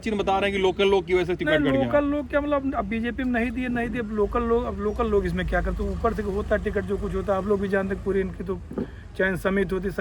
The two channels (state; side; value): identical; both; correlation 1.00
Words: में बता रहे हैं कि लोकल लोग की वजह से टिकट कट गया। लोकल लोग क्या, मतलब अब बीजेपी में नहीं दिए, अब लोकल लोग इसमें क्या करते? ऊपर से होता टिकट जो कुछ होता, आप लोग भी जानते, पूरी इनकी तो चयन समिति होती,